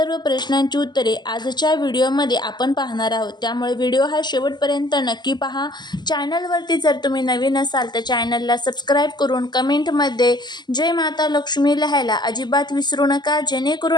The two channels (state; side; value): late; right; 0.21 ms